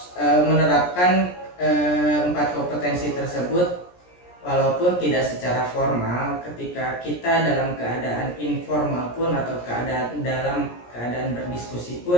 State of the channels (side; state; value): right; late; 17 ms